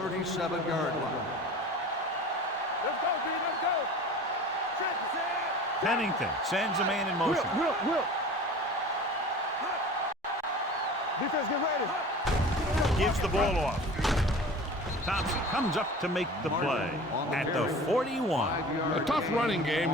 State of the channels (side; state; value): both; normal; correlation 0.39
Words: line. Let's go, B. Let's go. Pennington sends a man in motion. Will. Defense, get ready. Gives the ball off. Thompson comes up to make the play at the 41. A tough running game